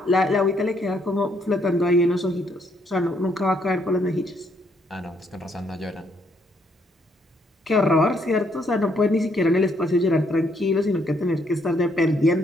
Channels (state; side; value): normal; both; correlation 0.71